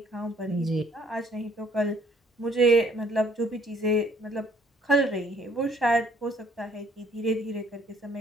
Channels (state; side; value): normal; both; correlation 0.62